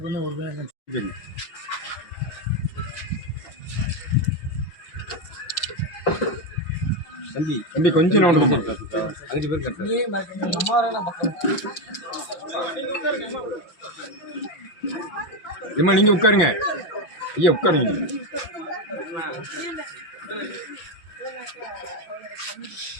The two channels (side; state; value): right; late; 5.8 ms